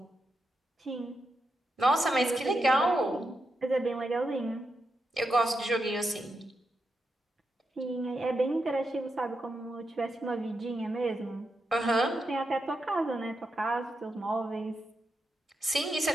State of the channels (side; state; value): both; normal; correlation 0.85